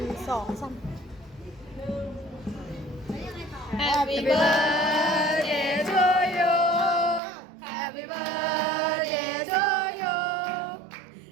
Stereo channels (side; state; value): left; drops out; at 7.2 s